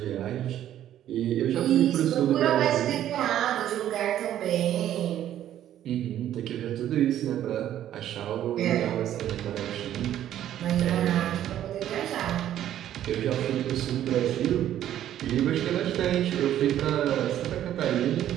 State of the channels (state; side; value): quieter; left; 11.6 dB